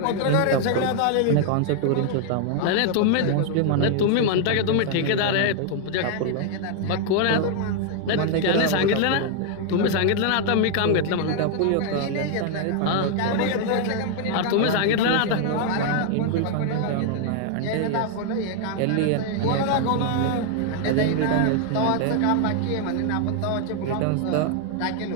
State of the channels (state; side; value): different; both; correlation 0.00